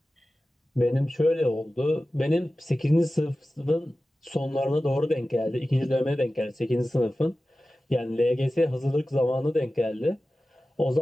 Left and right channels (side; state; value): both; normal; correlation 0.95